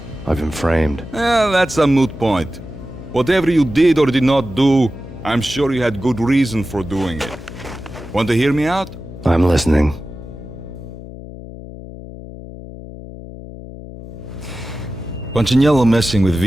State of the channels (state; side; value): noise; left; hum, 13 dB below the sound